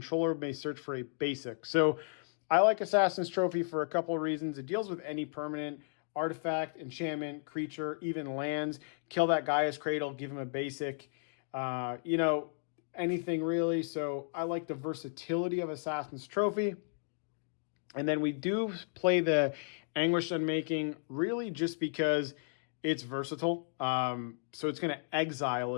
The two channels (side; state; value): right; silent; digital silence